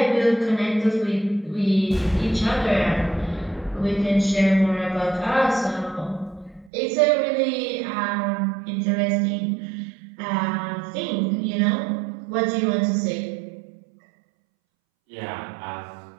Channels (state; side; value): drops out; left; at 6.7 s